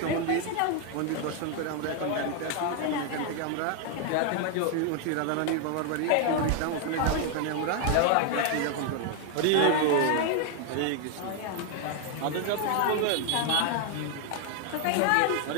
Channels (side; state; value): both; different; correlation 0.01